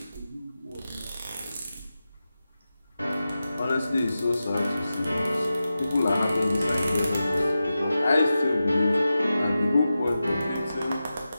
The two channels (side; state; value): both; inverted; correlation -0.92